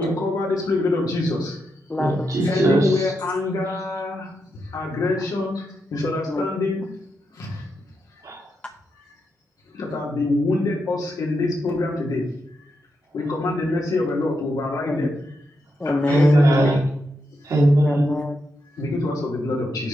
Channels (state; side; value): normal; both; correlation 0.84